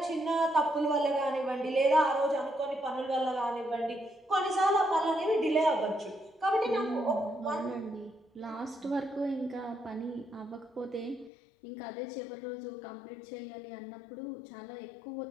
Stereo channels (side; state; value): right; drops out; at 11.3 s